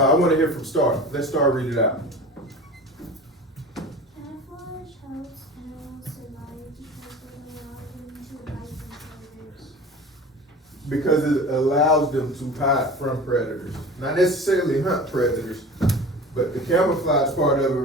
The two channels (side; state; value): both; normal; correlation 0.37